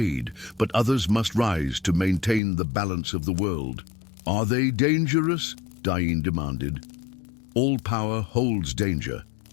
but others must rise to maintain the balance of the world." "Are they dangerous?" Dain demanded. "All power holds danger,"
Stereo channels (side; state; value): right; drops out; at 2.4 s